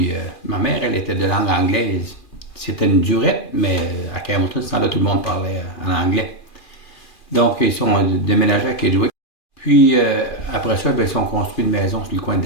ma mère, elle était de langue anglaise. C'était une durette, mais à Campbellton, ce temps-là, tout le monde parlait en anglais. Donc, ils sont déménagés à Kedgewick. Puis, après ça, ils ont construit une maison sur le coin de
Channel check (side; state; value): right; late; 2.4 ms